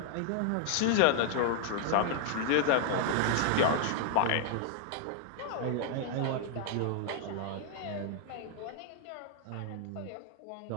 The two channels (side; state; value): both; different; correlation -0.01